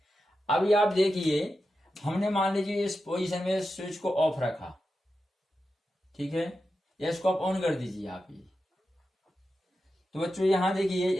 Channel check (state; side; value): normal; both; correlation 0.90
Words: अभी आप देखिए, हमने मान लीजिए इस पोजीशन में स्विच को ऑफ रखा, ठीक है, या इसको आप ऑन कर दीजिए आप ये। तो बच्चों यहां देखिए,